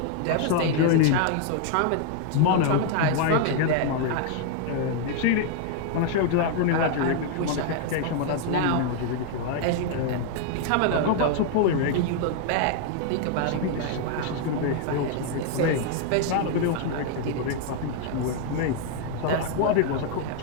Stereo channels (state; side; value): different; both; correlation 0.00